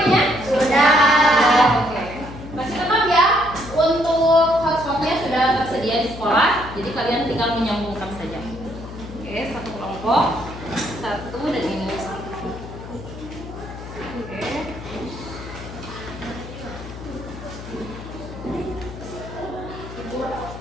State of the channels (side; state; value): left; noise; hum, 12 dB below the sound